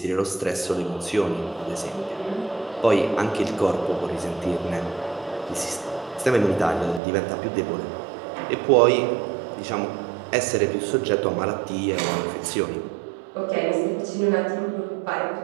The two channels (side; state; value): left; drops out; at 7.0 s